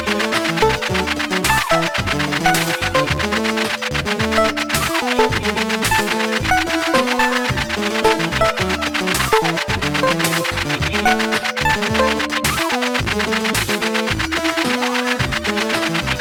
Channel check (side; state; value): both; identical; correlation 1.00